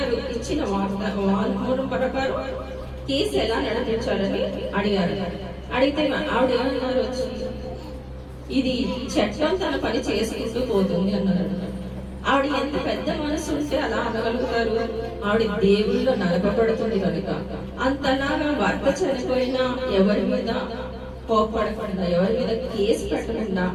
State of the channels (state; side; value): identical; both; correlation 1.00